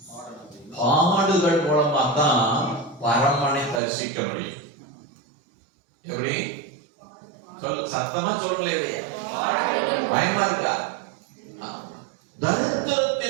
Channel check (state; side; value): drops out; left; at 3.8 s